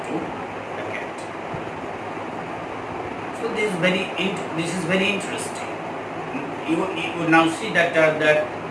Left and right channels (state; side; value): identical; both; correlation 1.00